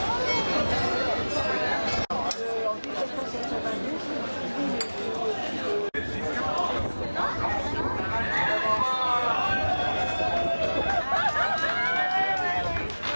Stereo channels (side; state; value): both; inverted; correlation -1.00